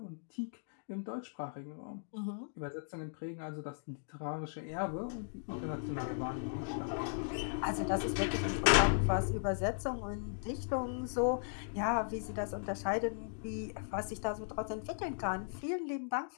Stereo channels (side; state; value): right; silent; digital silence